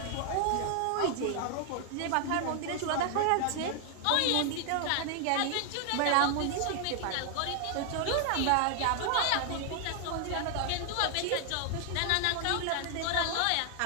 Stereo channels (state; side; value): different; both; correlation 0.00